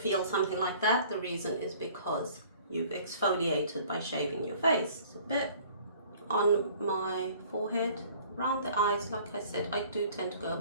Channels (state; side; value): inverted; both; correlation -0.52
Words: something like that, the reason is because you've exfoliated by shaving your face. It's a bit on my forehead, around the eyes. Like I said, I do tend to go a